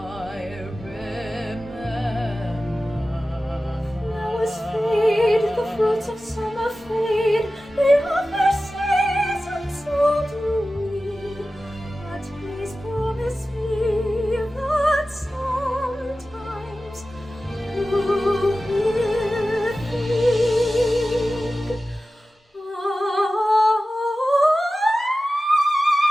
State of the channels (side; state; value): both; normal; correlation 0.95